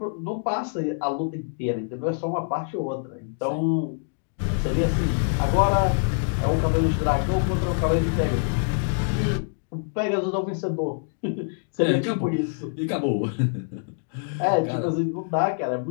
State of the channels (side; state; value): right; silent; digital silence